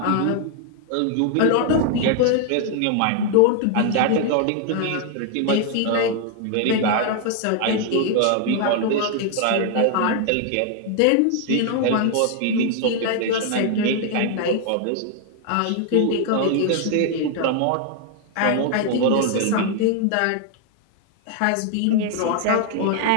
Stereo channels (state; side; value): different; both; correlation 0.00